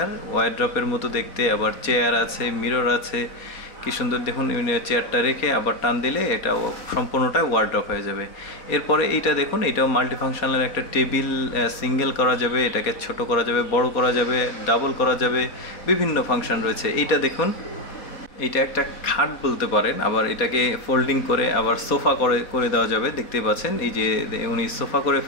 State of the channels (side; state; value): right; late; 4.0 ms